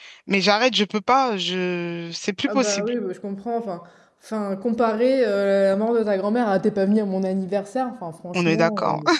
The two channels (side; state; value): both; identical; correlation 1.00